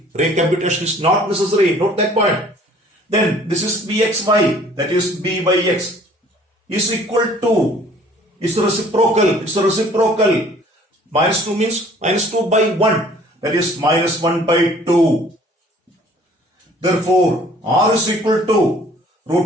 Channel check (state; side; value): normal; both; correlation 0.54